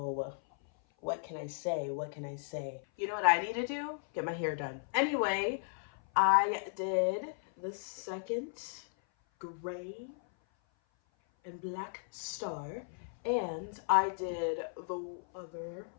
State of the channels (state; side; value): silent; right; 54 dB below the other